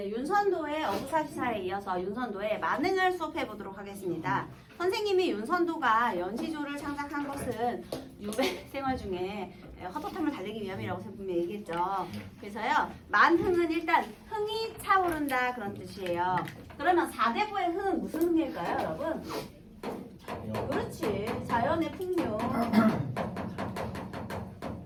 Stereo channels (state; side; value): identical; both; correlation 1.00